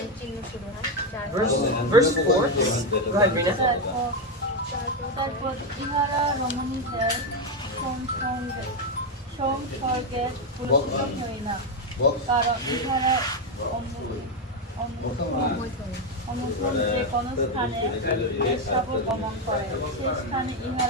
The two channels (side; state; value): both; normal; correlation 0.07